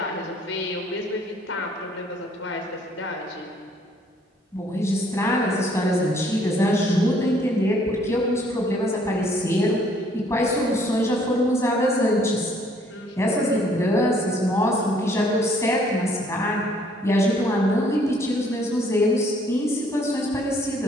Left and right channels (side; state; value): both; normal; correlation 0.63